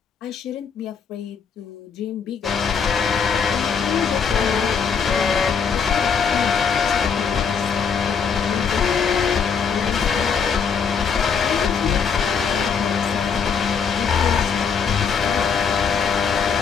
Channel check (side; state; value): right; quieter; 6.3 dB